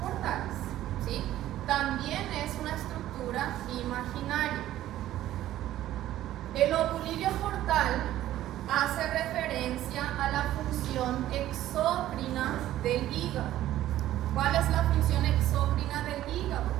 portales, ¿sí? También es una estructura imaginaria. El lobulillo portal hace referencia a la función exócrina del hígado. ¿Cuál es la función exócrina del hígado?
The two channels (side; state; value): left; quieter; 13.6 dB